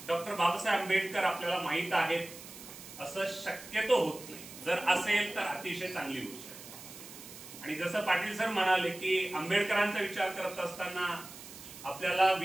डॉक्टर बाबासाहेब आंबेडकर आपल्याला माहित आहेत असं शक्यतो होत नाही. जर असेल तर अतिशय चांगली गोष्ट आहे. आणि जसं पाटील सर म्हणाले की आंबेडकरांचा विचार करत असताना आपल्याला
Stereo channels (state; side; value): noise; right; hiss, 15 dB below the sound